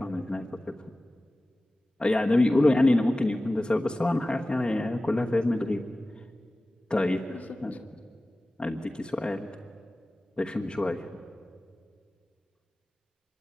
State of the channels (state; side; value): normal; both; correlation 0.97